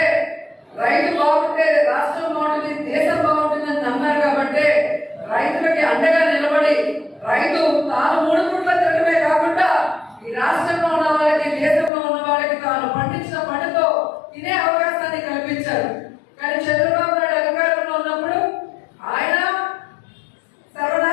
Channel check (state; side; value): drops out; right; at 11.9 s